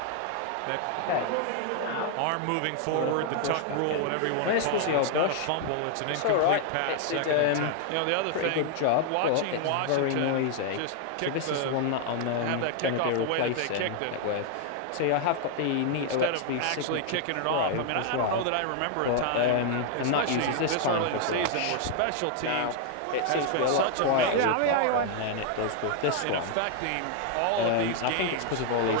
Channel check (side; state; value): both; different; correlation 0.00